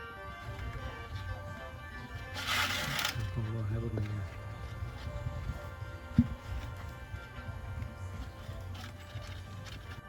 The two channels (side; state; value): both; identical; correlation 1.00